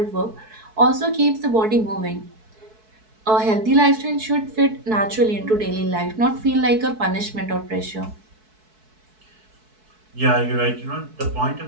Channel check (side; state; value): left; late; 4.6 ms